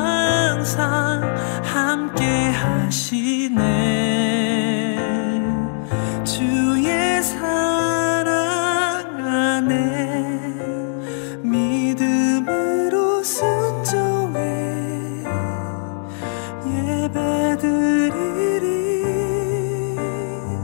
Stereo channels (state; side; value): silent; right; digital silence